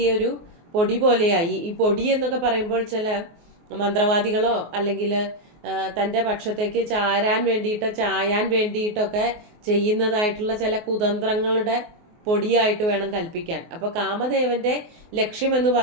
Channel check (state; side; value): late; left; 24 ms